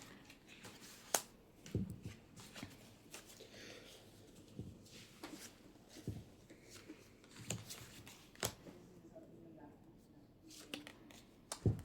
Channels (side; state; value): both; identical; correlation 1.00